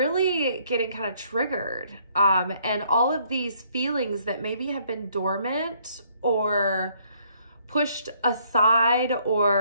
getting kind of triggered. And all of these feelings that maybe have been dormant or pushed aside,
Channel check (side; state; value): both; inverted; correlation -0.66